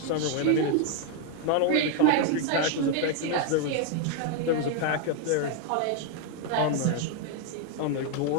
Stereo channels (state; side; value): different; both; correlation 0.01